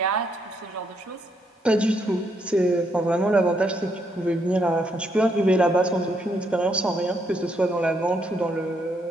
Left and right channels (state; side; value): normal; both; correlation 0.75